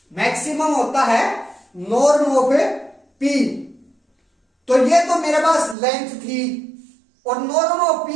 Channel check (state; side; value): drops out; left; at 5.8 s